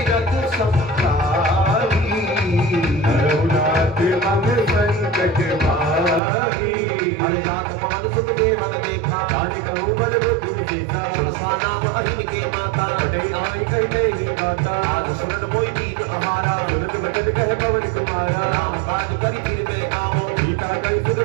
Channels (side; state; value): left; drops out; at 6.2 s